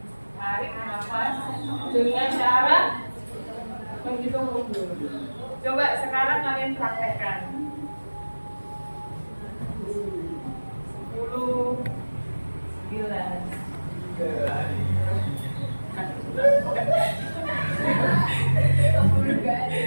tarik nafas dengan cara menghitung mundur. Coba sekarang kalian praktekkan. 10, 9.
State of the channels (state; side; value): inverted; both; correlation -1.00